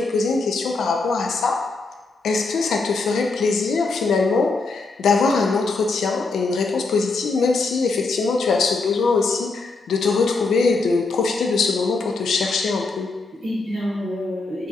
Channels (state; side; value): quieter; right; 3.8 dB